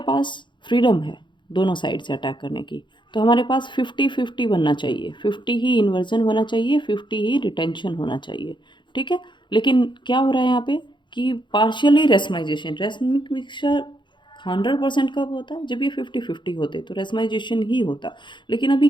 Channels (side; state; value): right; late; 0.23 ms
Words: पास फ्रीडम है दोनों साइड से अटैक करने की। तो हमारे पास 50-50 बनना चाहिए, 50 ही इन्वर्जन होना चाहिए, 50 ही रिटेंशन होना चाहिए, ठीक है। लेकिन क्या हो रहा है यहाँ पे कि पार्शियली रेसमाइजेशन, रेसमिक मिक्सचर 100% कब होता है, जब ये 50-50 होते, तो रेसमाइजेशन ही होता। लेकिन अभी